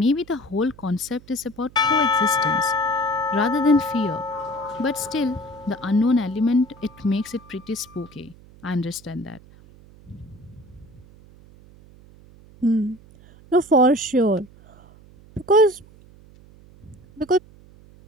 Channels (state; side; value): noise; right; hum, 24 dB below the sound